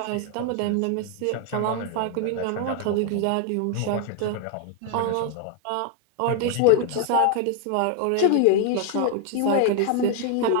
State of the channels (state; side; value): different; both; correlation 0.00